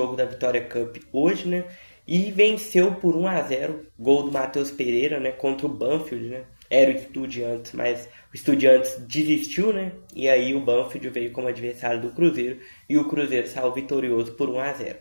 da Vitória Cup hoje, né, e venceu por 1-0, gol do Matheus Pereira, né, contra o Banfield, né. Era o Estudiantes, mas o Estudiantes desistiu, né, e aí o Banfield veio como adversário do Cruzeiro e o Cruzeiro saiu vitorioso por 1-0.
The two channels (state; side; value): inverted; both; correlation -1.00